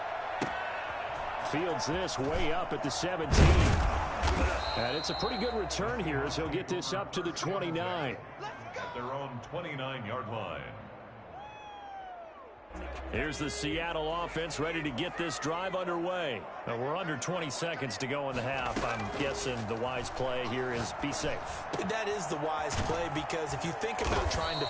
Fields this way up at the 17. And it's a pretty good return here as he'll get this up to the 29. At their own 29-yard line. Here's the Seattle offense ready to get this drive underway. Now we're under 20 seconds to go in the half. I'm guessing the wise play here is be safe. That is the wise play because if you think about trying to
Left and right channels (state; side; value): identical; both; correlation 1.00